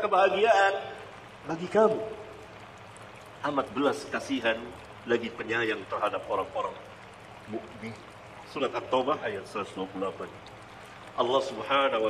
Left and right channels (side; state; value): both; identical; correlation 1.00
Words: kebahagiaan bagi kamu. Amat belas kasihan lagi penyayang terhadap orang-orang mukmin. Surat At-Taubah ayat 128. Allah Subhanahu